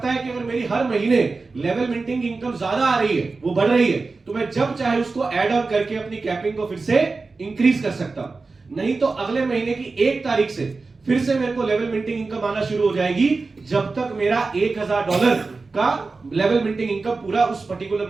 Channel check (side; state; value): left; quieter; 3.9 dB